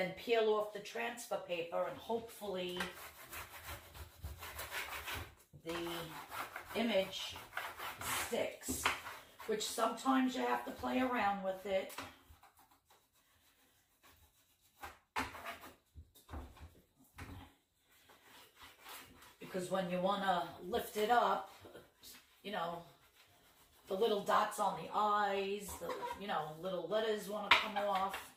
peel off the transfer paper, and hopefully the image sticks, which sometimes you have to play around with it. Because when you want to lift it up, you know, the little dots on the eyes, the, you know, little letters want to come off.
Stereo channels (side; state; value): both; identical; correlation 1.00